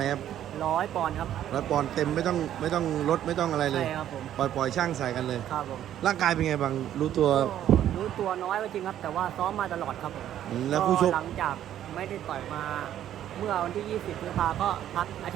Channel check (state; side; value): quieter; left; 11.3 dB